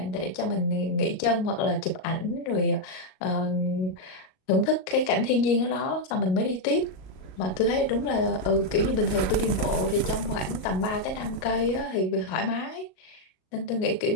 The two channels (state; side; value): late; right; 38 ms